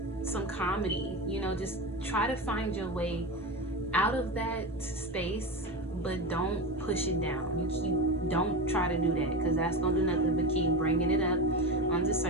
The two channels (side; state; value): both; normal; correlation 0.20